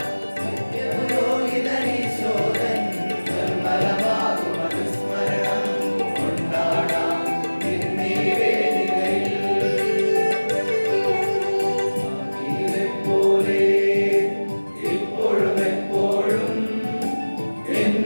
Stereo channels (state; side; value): inverted; both; correlation -1.00